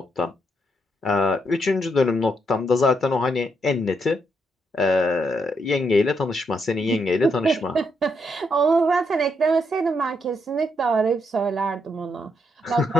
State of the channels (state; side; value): normal; both; correlation 0.77